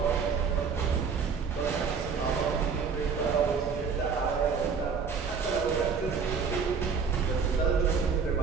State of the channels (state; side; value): quieter; left; 5.9 dB